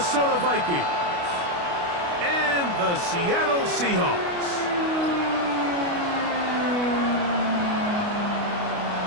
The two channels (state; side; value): late; left; 29 ms